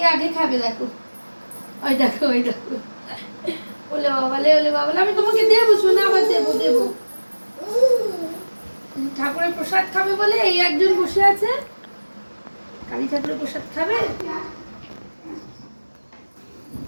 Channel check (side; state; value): both; inverted; correlation -1.00